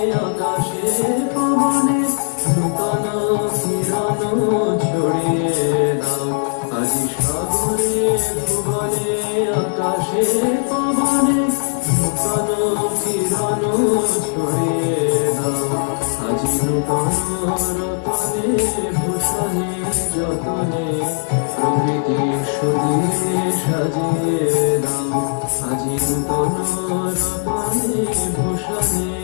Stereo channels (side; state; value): right; silent; digital silence